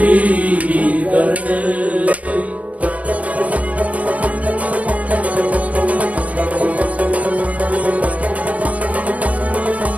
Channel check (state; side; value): late; left; 0.068 ms